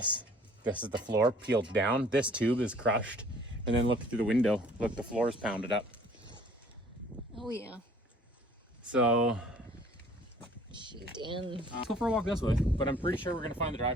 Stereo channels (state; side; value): normal; both; correlation 0.54